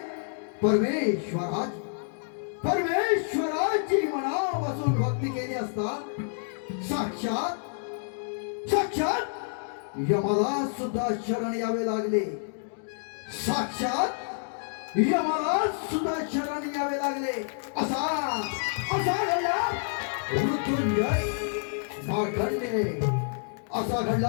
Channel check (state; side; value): silent; right; digital silence